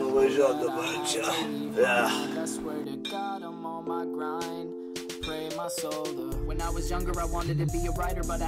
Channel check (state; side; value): identical; both; correlation 1.00